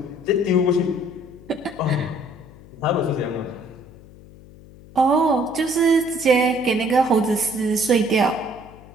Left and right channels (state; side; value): noise; left; hum, 21 dB below the sound